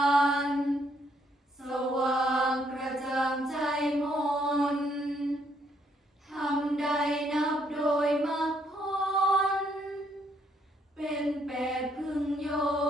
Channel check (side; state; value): both; normal; correlation 0.71